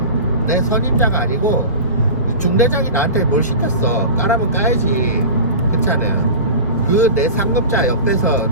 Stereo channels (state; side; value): inverted; both; correlation -0.32